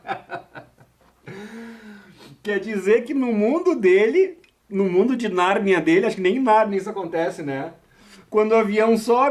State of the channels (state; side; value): identical; both; correlation 1.00